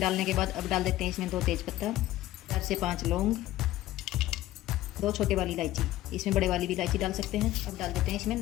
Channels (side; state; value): right; quieter; 15.3 dB